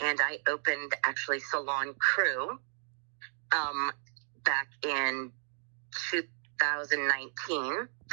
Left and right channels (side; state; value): left; silent; 56 dB below the other